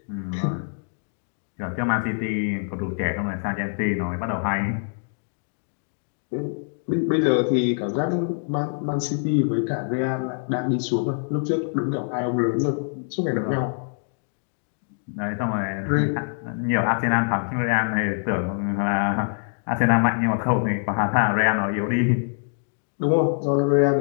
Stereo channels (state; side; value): silent; right; digital silence